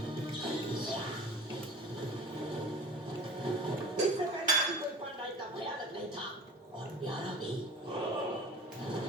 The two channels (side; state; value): both; normal; correlation 0.39